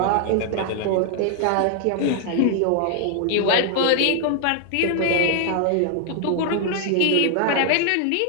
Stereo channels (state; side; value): different; both; correlation 0.00